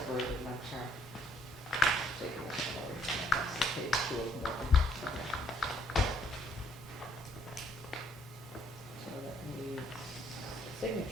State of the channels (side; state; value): both; normal; correlation 0.68